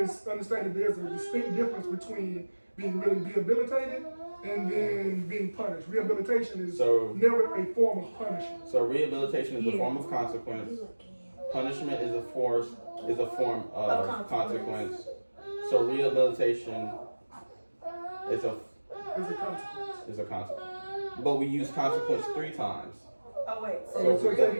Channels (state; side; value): inverted; both; correlation -1.00